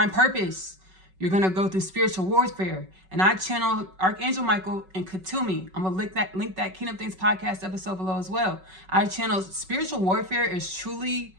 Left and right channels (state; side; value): late; left; 5.3 ms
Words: purpose, you're going to go through spiritual warfare. And I channel Archangel Michael and Hoomi. I'm going to link that Kingdom Things podcast episode below as well. I channel spiritual warfare is truly